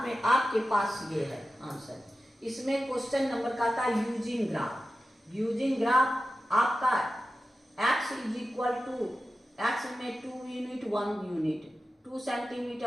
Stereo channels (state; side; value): normal; both; correlation 0.93